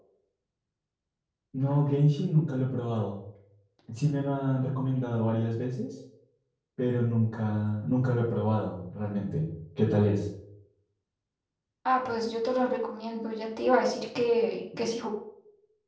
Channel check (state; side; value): identical; both; correlation 1.00